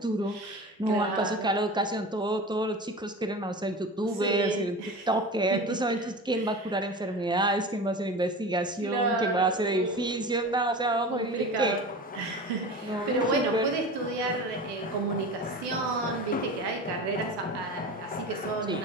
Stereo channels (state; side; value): normal; both; correlation 0.32